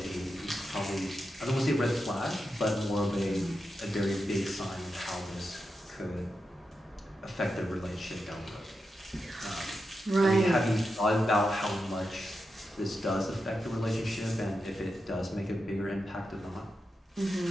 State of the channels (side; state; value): both; normal; correlation 0.88